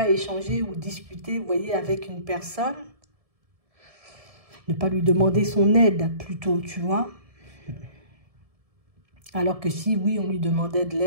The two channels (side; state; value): left; late; 1.7 ms